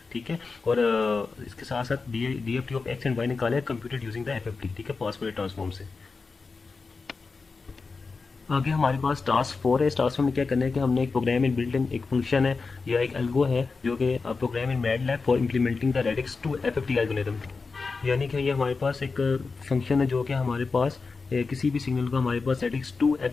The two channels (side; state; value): right; quieter; 4.4 dB